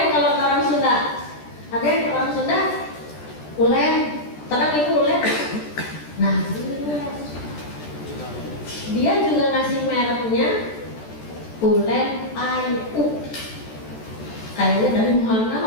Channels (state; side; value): late; right; 14 ms